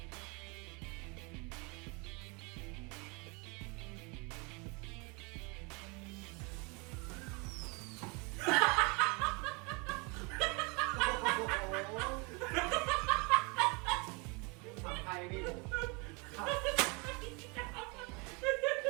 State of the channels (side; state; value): left; quieter; 30.3 dB